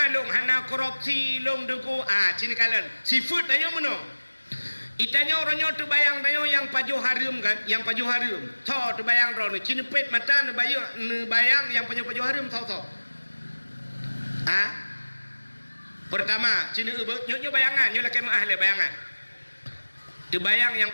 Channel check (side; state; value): both; inverted; correlation -1.00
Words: long hana korupsi long deku. Cini kalian seafood tanya mana? Itanya orangnya tu bayang tanya yang pajuh harim kan, yang pajuh harim. So tu bayang orang ni cini pet mata ni bayang yang pajuh harim so. Pertama cini nyo bayangan nyo laki maah le bayangan. Tu bayang yang